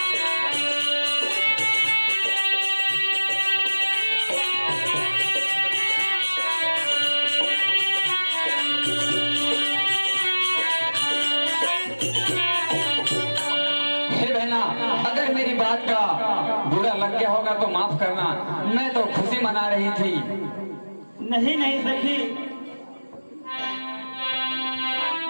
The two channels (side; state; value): both; inverted; correlation -1.00